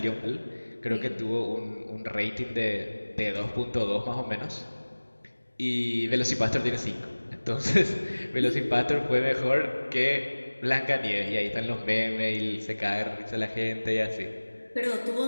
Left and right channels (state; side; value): inverted; both; correlation -1.00